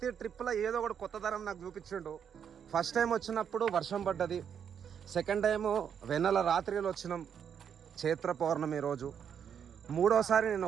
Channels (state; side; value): quieter; left; 8.0 dB